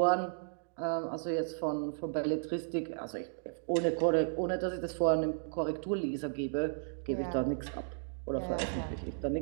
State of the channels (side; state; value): left; silent; digital silence